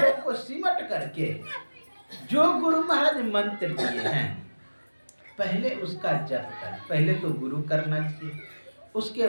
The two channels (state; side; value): inverted; both; correlation -1.00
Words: को सिमट करके जो गुरु महाराज मंत्र दिए हैं, पहले उसका जप कर। पहले तो गुरु करना चाहिए, उसके